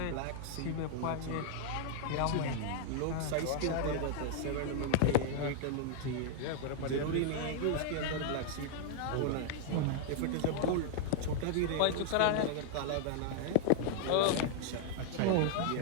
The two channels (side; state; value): both; different; correlation -0.01